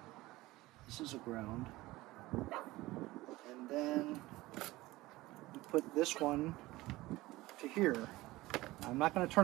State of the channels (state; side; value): quieter; left; 19.0 dB